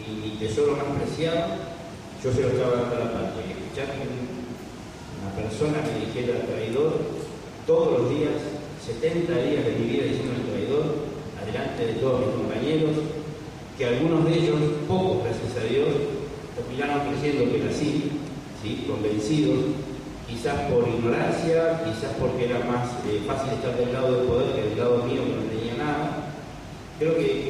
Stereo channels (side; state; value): both; identical; correlation 1.00